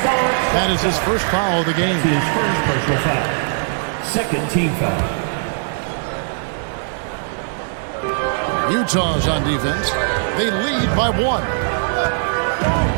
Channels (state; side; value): silent; left; digital silence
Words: That is his first foul of the game. His first personal foul. Second team foul. Utah's on defense. They lead by 1.